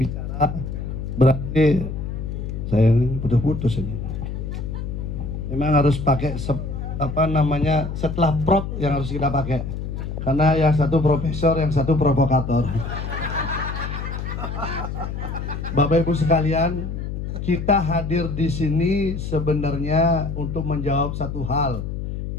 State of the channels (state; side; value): noise; left; hum, 5 dB below the sound